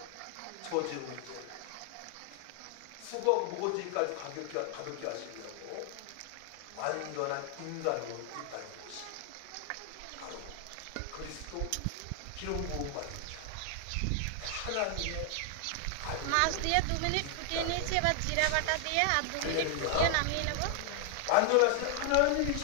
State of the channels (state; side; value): different; both; correlation 0.00